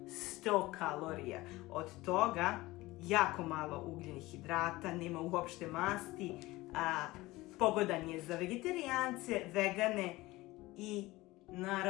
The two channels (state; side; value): quieter; right; 19.5 dB